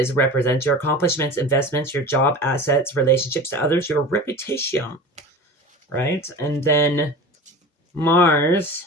represents your accomplishments, investments, your job, assets, relationships to others, your reputation, right? And then Mars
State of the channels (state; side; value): normal; both; correlation 0.34